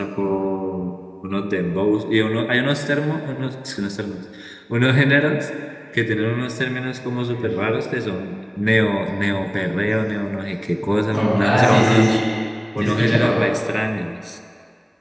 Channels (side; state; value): both; identical; correlation 1.00